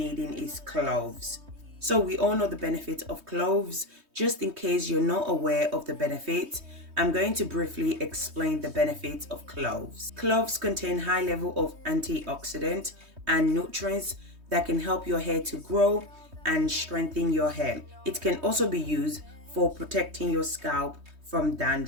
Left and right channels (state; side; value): late; left; 3.2 ms